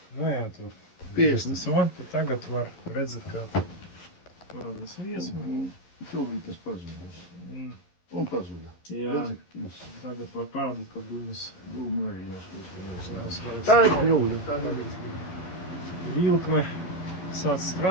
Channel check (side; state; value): right; late; 11 ms